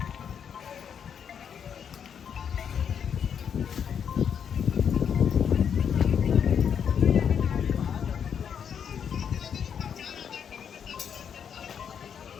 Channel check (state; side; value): quieter; right; 7.8 dB